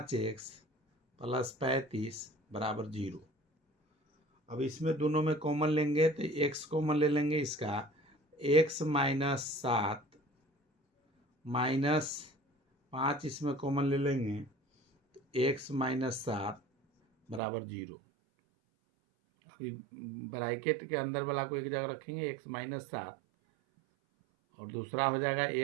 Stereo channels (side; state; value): left; drops out; at 17.4 s